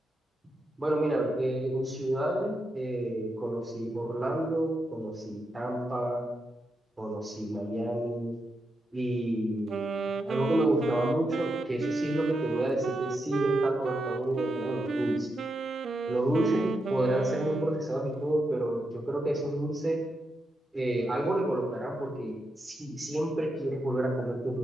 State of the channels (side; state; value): both; normal; correlation 0.85